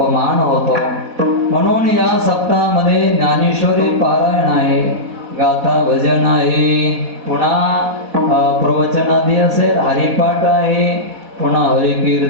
होतो. म्हणून या सप्ताहामध्ये ज्ञानेश्वरी पारायण आहे, गाथा भजन आहे, पुन्हा प्रवचनादी असेल, हरिपाठ आहे, पुन्हा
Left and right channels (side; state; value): left; late; 4.1 ms